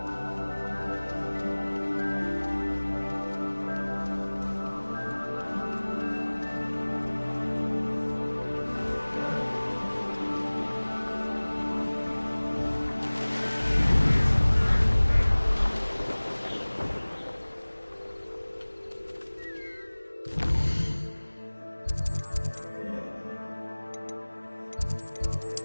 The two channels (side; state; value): both; inverted; correlation -1.00